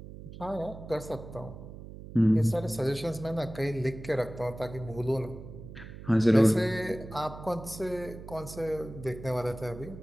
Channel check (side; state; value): right; noise; hum, 13 dB below the sound